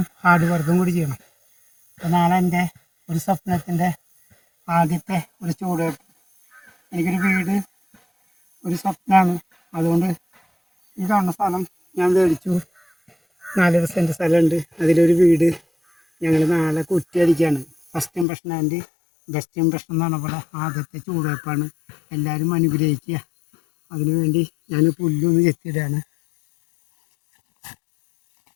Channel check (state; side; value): drops out; right; at 18.2 s